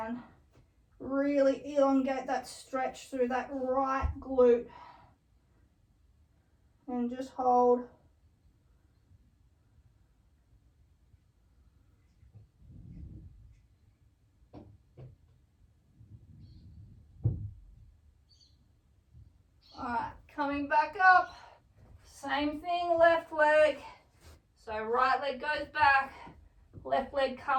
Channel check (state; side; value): identical; both; correlation 1.00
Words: Really elongate that stretch through that right glute. And just hold. All right, coming back up. Same thing, left leg. So right leg goes back, left leg